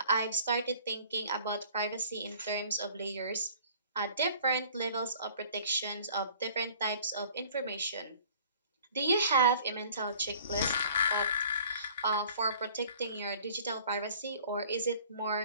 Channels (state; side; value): inverted; both; correlation -0.52